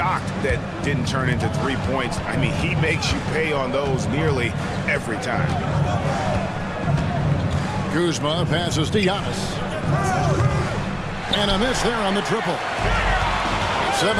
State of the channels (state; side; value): identical; both; correlation 1.00